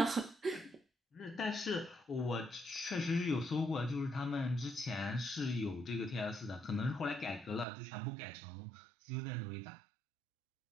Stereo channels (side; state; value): left; drops out; at 7.7 s